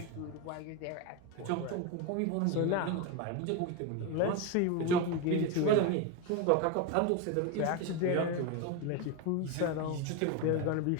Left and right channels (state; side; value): different; both; correlation 0.03